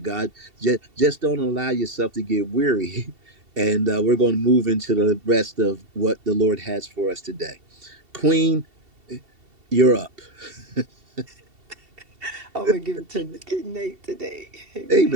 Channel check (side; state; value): left; late; 2.7 ms